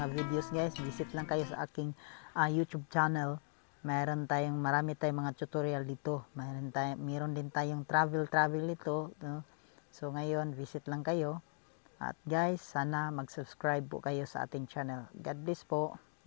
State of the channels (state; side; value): silent; right; 52 dB below the other